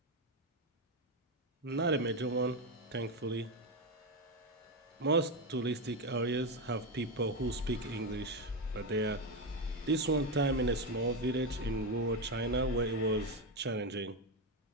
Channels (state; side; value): normal; both; correlation 0.11